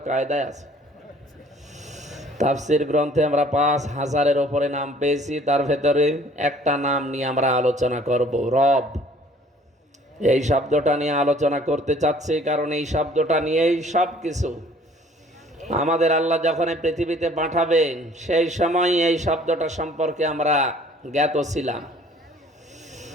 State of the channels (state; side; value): normal; both; correlation 0.55